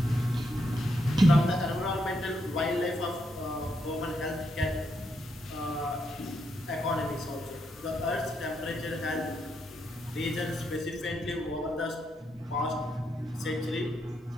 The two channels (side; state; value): both; normal; correlation 0.79